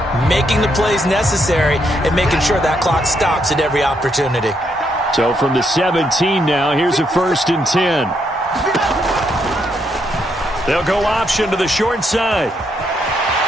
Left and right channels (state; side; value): normal; both; correlation 0.77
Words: making the plays necessary, and making sure that clock stops at every opportunity. So from the 17 now, here's a 1st and 10. They'll go option to the short side.